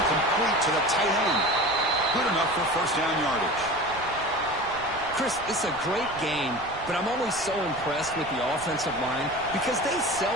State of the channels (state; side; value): noise; right; rumble, 18 dB below the sound